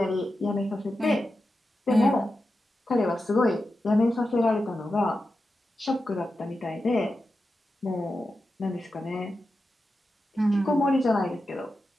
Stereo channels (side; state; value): both; normal; correlation 0.90